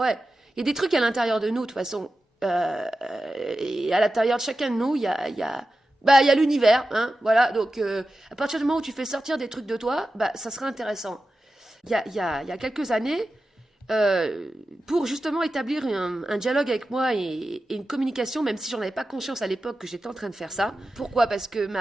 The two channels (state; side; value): normal; both; correlation 0.93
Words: il y a des trucs à l'intérieur de nous, de toute façon. Et à l'intérieur de chacun de nous, il y a l'univers, hein, voilà. Donc, à partir du moment où tu fais sortir des trucs de toi, ça sera intéressant. Il y a quelques années, pour justement établir un dialogue avec moi et une communication, même si j'en avais pas conscience à l'époque que j'étais en train de faire ça. Pourquoi ? Parce que